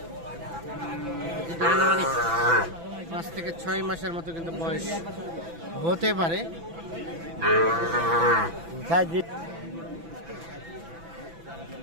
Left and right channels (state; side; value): late; left; 6.0 ms